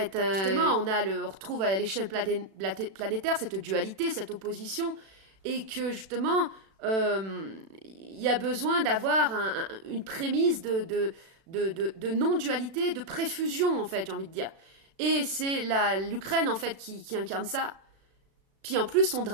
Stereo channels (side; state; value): left; late; 36 ms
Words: Justement, on retrouve à l'échelle planétaire cette dualité, cette opposition, et que justement, il y a besoin d'avoir une prémisse de non-dualité, de préfusion en fait, j'ai envie de dire. Et c'est l'Ukraine en fait qui incarne ça. Puis en plus, son